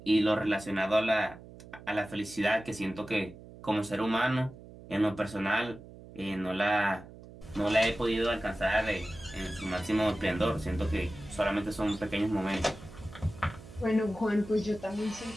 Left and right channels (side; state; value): right; noise; hum, 18 dB below the sound